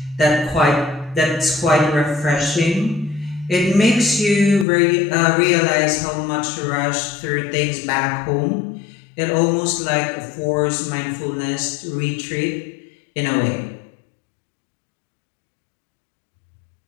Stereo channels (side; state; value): right; drops out; at 4.7 s